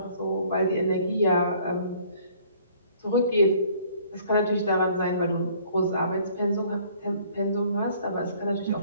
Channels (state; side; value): inverted; both; correlation -0.58